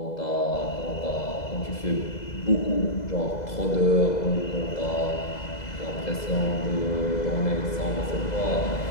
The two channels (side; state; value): right; late; 2.0 ms